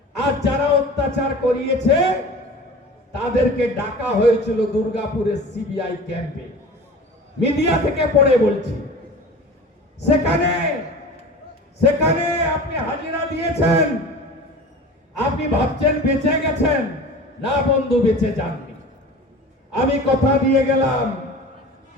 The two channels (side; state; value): both; normal; correlation 0.38